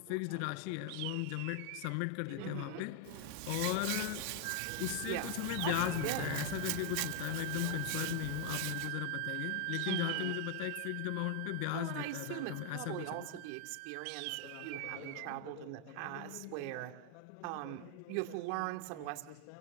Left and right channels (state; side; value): different; both; correlation 0.00